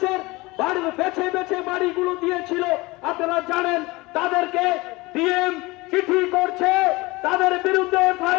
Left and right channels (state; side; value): quieter; right; 22.4 dB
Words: বাড়ি বেছে বেছে বাড়িগুলো দিয়েছিল আপনারা জানেন। তাদেরকে ডিএম চিঠি করছে, তাদের বিরুদ্ধে